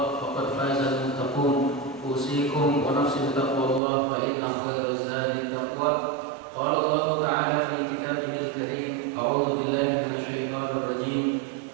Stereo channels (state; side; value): drops out; left; at 3.8 s